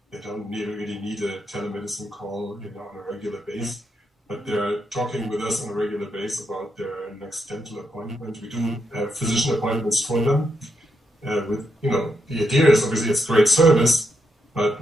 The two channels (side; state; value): both; normal; correlation 0.81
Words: They don't really need a telemedicine call, on a regular basis. But they're talking with us on a regular basis about their next dental appointment. We do physician appointments for them. The idea is obviously it's great service,